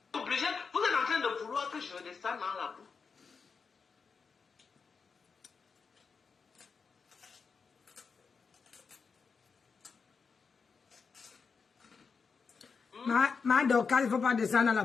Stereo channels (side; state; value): right; quieter; 5.3 dB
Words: obligé, vous êtes en train de vouloir que je descende dans la boue. Ma Dorcas, il ne faut pas descendre dans la